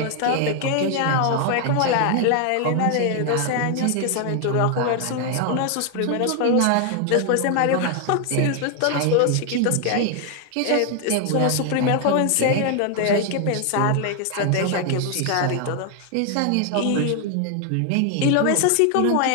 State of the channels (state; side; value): different; both; correlation 0.00